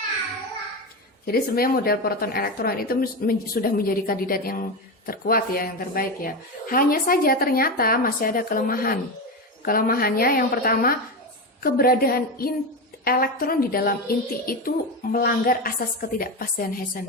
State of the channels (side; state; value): both; normal; correlation 0.17